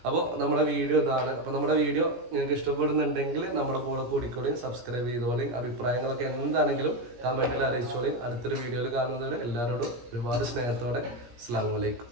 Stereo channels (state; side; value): late; left; 17 ms